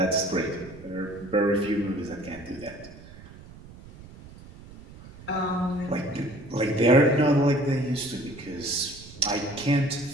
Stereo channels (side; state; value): right; noise; rumble, 19 dB below the sound